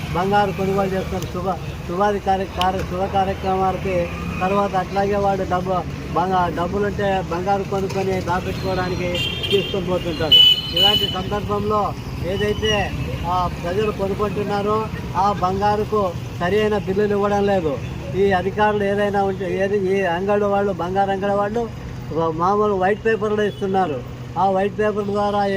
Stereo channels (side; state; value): both; identical; correlation 1.00